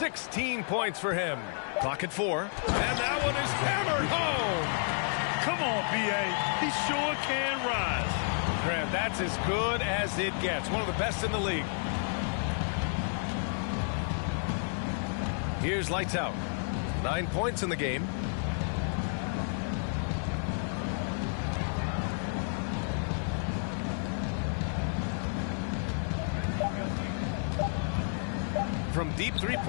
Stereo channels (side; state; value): right; silent; 57 dB below the other